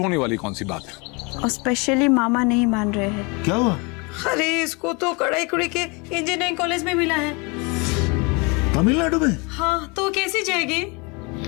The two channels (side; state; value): right; quieter; 29.6 dB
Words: वाली कौन सी बात है? और स्पेशली मामा नहीं मान रहे हैं। क्या हुआ? अरे इसको तो कड़ाईकुड़ी के इंजीनियरिंग कॉलेज में मिला है। तमिलनाडु में? हाँ, तो कैसी जाएगी?